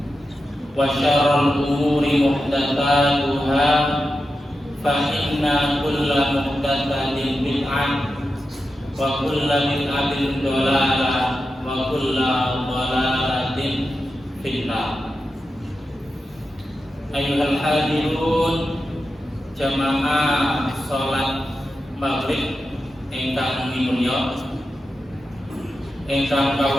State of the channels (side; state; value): both; normal; correlation 0.90